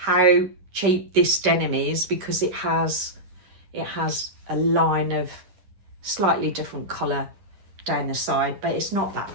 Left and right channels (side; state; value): left; late; 10 ms